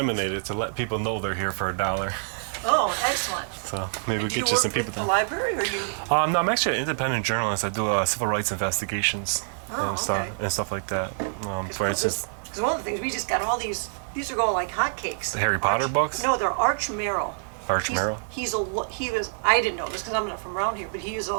it to let people know they're here for $1. Oh, excellent. So maybe we'll Do get you you some work people with the there. library, or you? No, I'm actually an independent journalist. I do civil rights investigations and stuff like that. For instance, Because one of the things we just got all these are going like hotcakes. the Harry Potter books. No, they're Arch Merrill. Arch Merrill. He was, I didn't know this because I'm not from around here, but he was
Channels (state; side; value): silent; left; 61 dB below the other